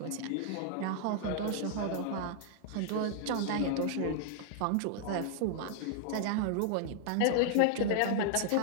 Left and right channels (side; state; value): both; different; correlation 0.00